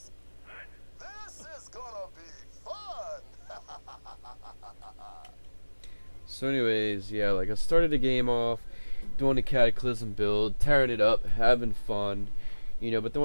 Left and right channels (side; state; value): both; inverted; correlation -1.00